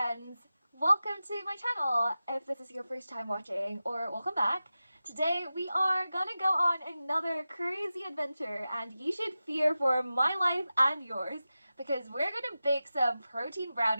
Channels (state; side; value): inverted; both; correlation -0.94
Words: friends! Welcome to my channel if this is your first time watching, or welcome back. Today we are gonna go on another crazy adventure, and you should fear for my life and yours because we're gonna bake some protein